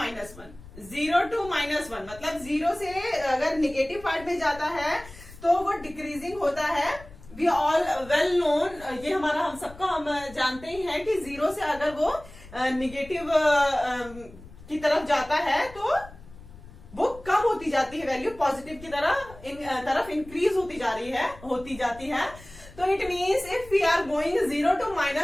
0 to -1 मतलब 0 से अगर निगेटिव पार्ट में जाता है तो वो डिक्रीजिंग होता है. वी ऑल वेल नोन, ये हमारा हम सबका हम जानते ही हैं कि 0 से अगर वो निगेटिव की तरफ जाता है तो वो कम होती जाती है वैल्यू, पॉजिटिव की तरफ इंक्रीज होती जाती है. तो it means if we are going 0 to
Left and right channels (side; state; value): left; noise; rumble, 19 dB below the sound